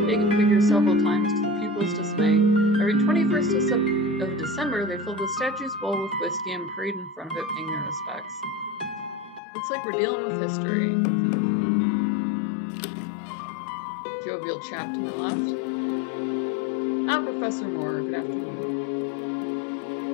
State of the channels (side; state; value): right; drops out; at 9.4 s